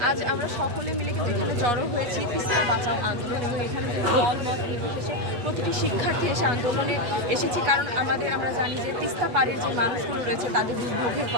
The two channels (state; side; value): late; left; 8.3 ms